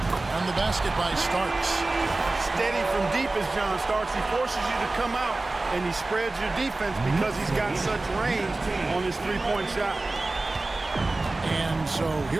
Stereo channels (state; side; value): quieter; left; 3.1 dB